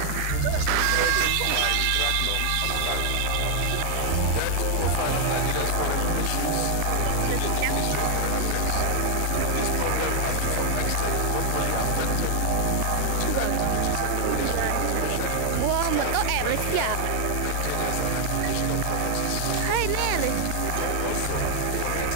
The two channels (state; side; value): different; both; correlation 0.00